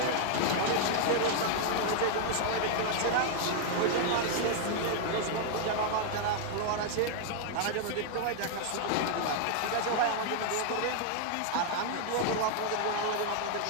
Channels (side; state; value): both; different; correlation 0.00